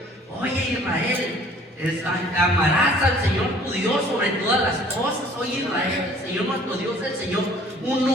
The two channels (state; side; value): normal; both; correlation 0.53